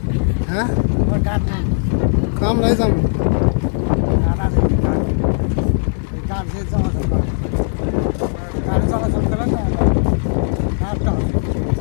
হ্যাঁ, ওর কাঠ নাই। আমরাই যাম। কাঠ আছে, কাঠ। এই কাঠ দিয়ে চলাচল করে। গাড়ি চলাচল করে না, কাঠটা হবে।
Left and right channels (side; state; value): right; silent; digital silence